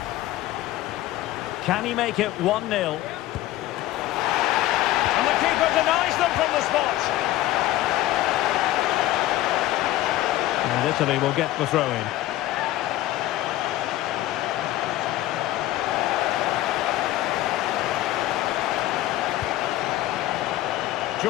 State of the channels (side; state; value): right; quieter; 15.3 dB